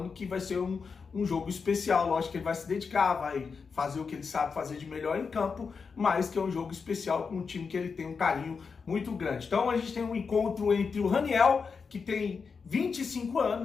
que vai ser um jogo especial. Lógico que ele vai se dedicar, vai fazer o que ele sabe fazer de melhor em campo, mas que é um jogo especial com um time que ele tem um carinho muito grande. Então a gente tem um encontro entre o Raniel, que tem 25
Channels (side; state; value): right; quieter; 5.3 dB